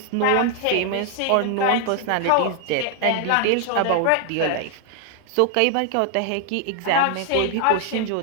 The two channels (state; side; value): different; both; correlation 0.00